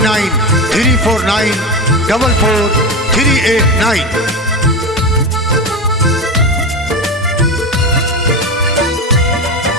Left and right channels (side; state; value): both; normal; correlation 0.21